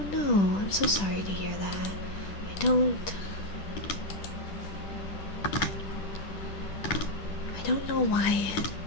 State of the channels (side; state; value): right; late; 10 ms